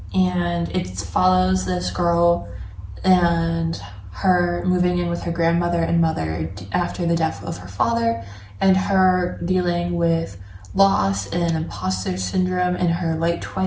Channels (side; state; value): both; identical; correlation 1.00